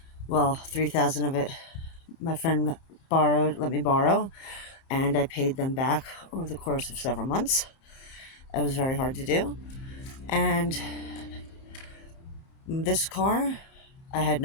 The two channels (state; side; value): late; right; 30 ms